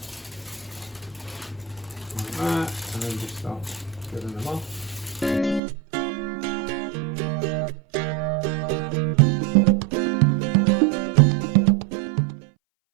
like that, and then just start filling them off.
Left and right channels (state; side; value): drops out; left; at 5.6 s